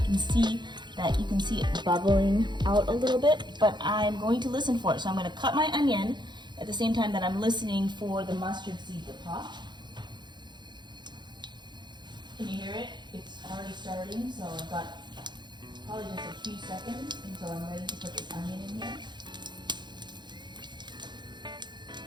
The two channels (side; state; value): left; late; 0.21 ms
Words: can see it bubbling out a little bit, but I'm going to listen for it. So I'm going to cut my onion at the same time that I'm listening for the mustard seed to pop. Can you hear it? It's already starting, so I've got probably just a few seconds until I'm ready to put this onion in here.